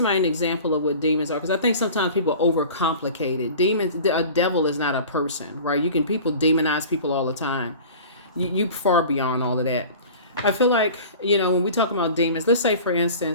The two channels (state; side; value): inverted; both; correlation -0.40